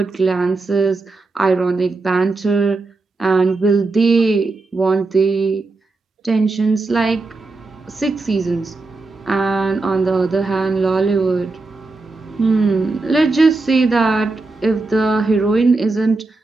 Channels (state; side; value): quieter; left; 3.5 dB